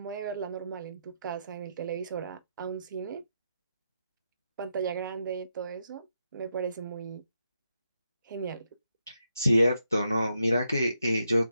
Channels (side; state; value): both; inverted; correlation -0.82